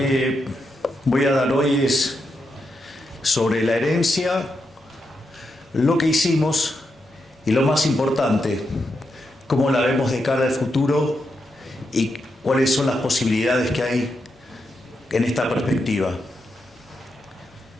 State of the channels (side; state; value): both; normal; correlation 0.84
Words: voy a dar hoy es sobre la herencia, lo que hicimos y lo más importante, cómo la vemos de cara al futuro y cuáles son las posibilidades que hay en esta perspectiva.